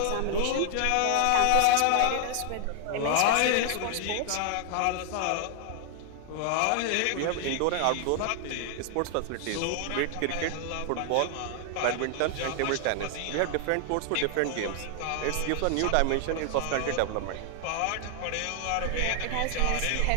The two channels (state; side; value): different; both; correlation 0.00